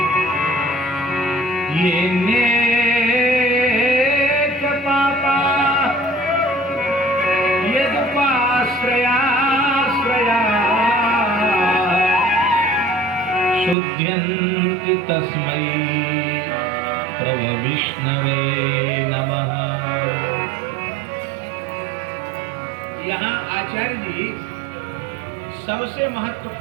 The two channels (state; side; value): drops out; left; at 13.8 s